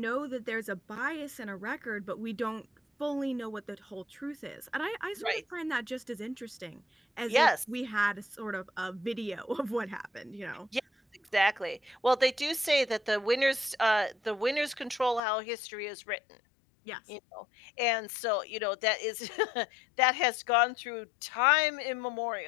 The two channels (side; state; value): right; drops out; at 15.2 s